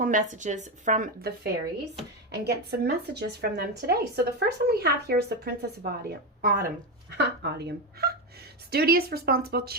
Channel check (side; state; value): both; normal; correlation 0.12